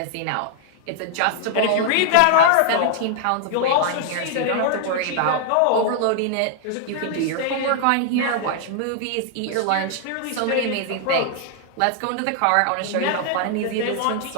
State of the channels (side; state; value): both; different; correlation 0.00